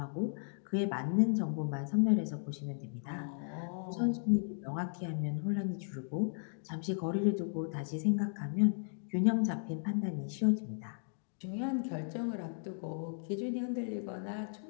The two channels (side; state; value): right; silent; digital silence